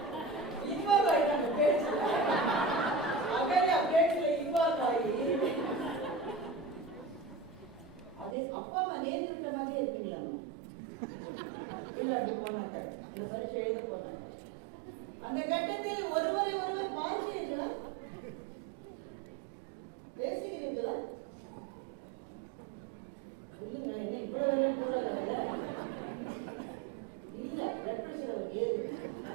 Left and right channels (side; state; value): left; drops out; at 8.3 s